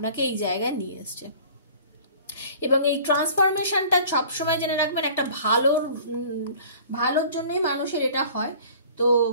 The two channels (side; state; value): both; inverted; correlation -0.47